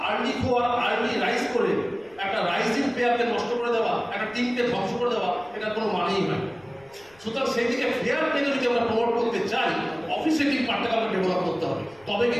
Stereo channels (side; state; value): left; noise; rumble, 30 dB below the sound